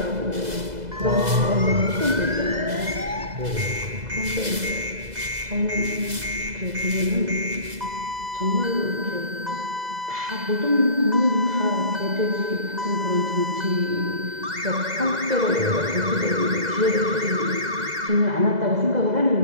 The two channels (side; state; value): left; late; 2.0 ms